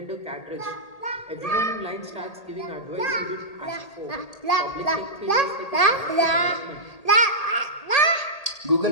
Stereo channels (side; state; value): right; late; 1.8 ms